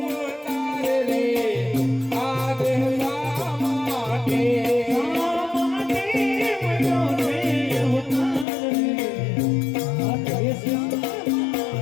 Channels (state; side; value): drops out; right; at 8.5 s